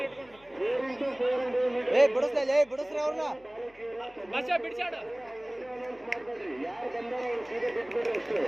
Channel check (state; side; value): noise; left; hum, 28 dB below the sound